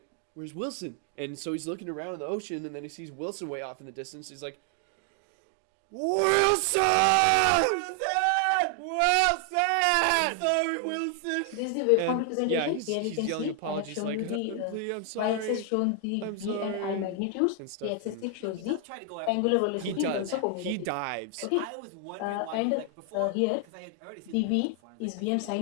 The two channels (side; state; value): both; different; correlation 0.00